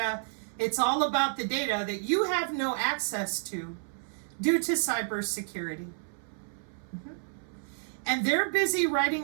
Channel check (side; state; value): left; silent; 58 dB below the other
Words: It's all about the data that you have no access to due to cybersecurity. And they're busy